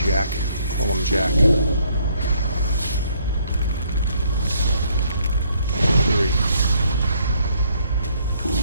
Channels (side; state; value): both; inverted; correlation -0.67